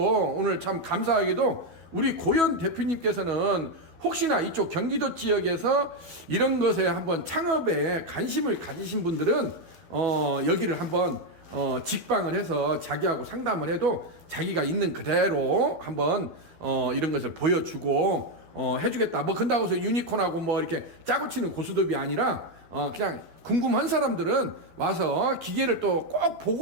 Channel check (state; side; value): late; left; 12 ms